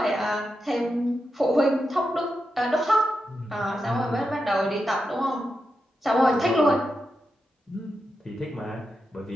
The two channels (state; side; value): normal; both; correlation 0.87